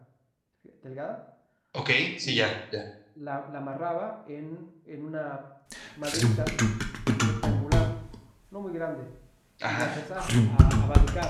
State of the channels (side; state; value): both; identical; correlation 1.00